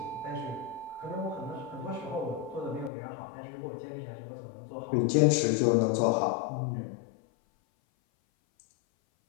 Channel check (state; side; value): drops out; right; at 2.9 s